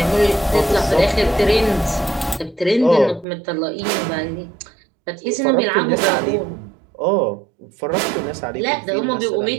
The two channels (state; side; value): drops out; left; at 3.2 s